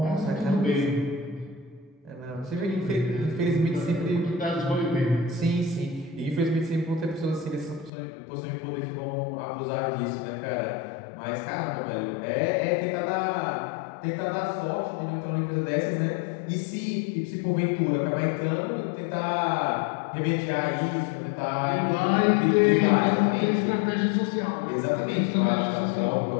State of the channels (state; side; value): drops out; right; at 7.9 s